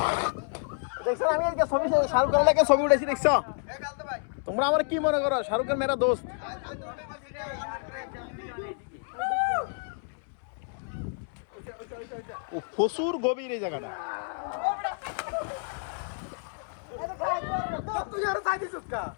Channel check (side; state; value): right; silent; 58 dB below the other